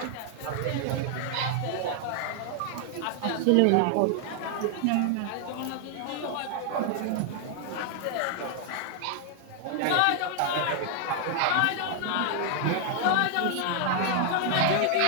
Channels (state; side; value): different; both; correlation 0.00